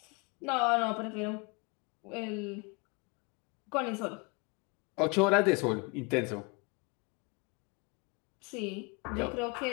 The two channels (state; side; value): quieter; right; 29.9 dB